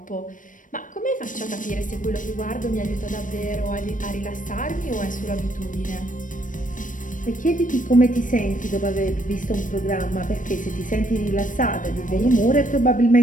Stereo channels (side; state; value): right; late; 0.38 ms